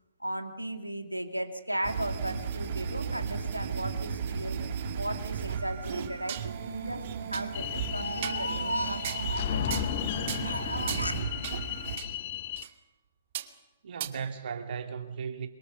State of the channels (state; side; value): inverted; both; correlation -0.64